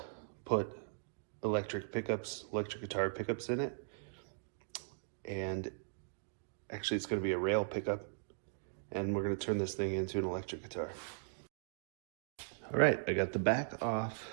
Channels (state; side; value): silent; left; digital silence